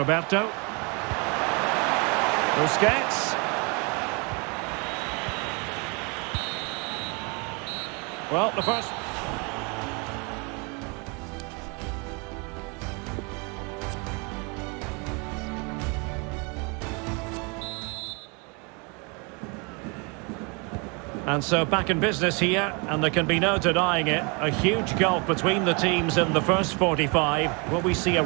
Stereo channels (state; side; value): quieter; left; 31.5 dB